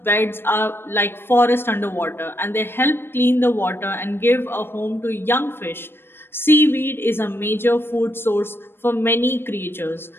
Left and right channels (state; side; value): late; right; 0.11 ms